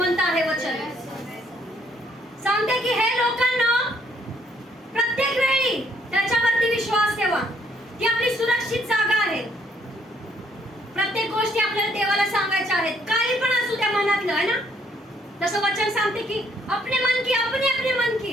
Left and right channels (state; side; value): normal; both; correlation 0.68